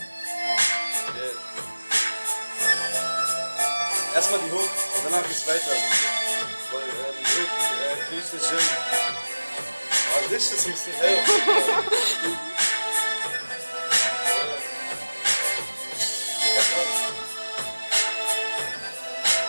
Yeah. Erstmal die Hook und danach geht's weiter. Weil die Hook krieg ich nicht hin. Aber Licht ist ein bisschen hell.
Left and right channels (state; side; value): inverted; both; correlation -1.00